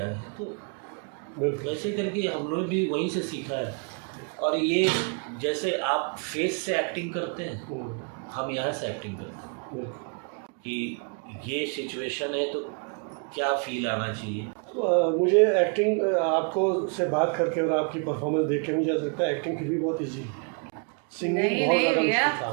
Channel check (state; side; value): quieter; left; 37.6 dB